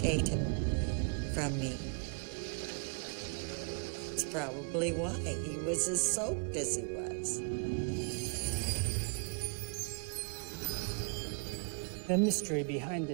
from me. It's probably why he was as soaked as he was. The mystery behind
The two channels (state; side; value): quieter; left; 37.6 dB